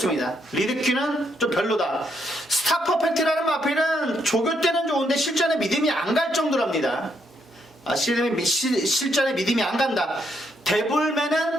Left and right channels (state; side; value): normal; both; correlation 0.76